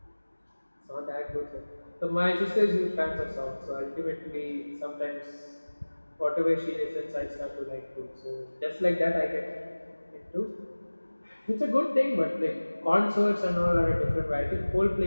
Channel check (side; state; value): both; inverted; correlation -1.00